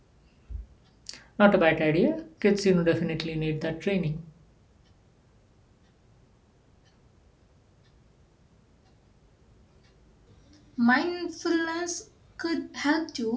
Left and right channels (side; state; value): both; identical; correlation 1.00